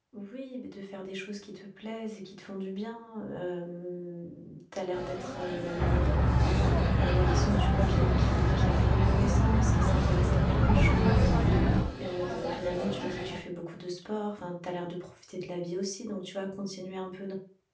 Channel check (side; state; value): both; identical; correlation 1.00